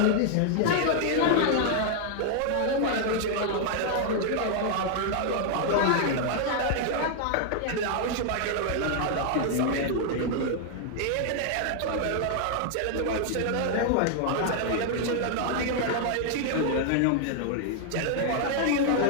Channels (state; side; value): different; both; correlation 0.00